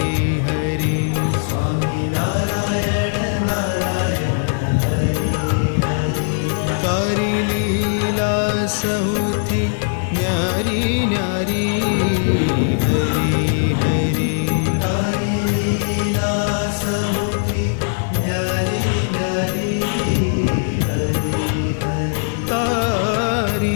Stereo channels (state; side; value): silent; right; digital silence